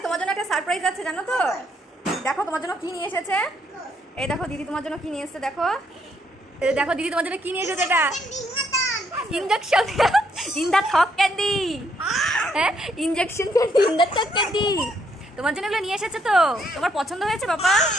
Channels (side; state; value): both; normal; correlation 0.72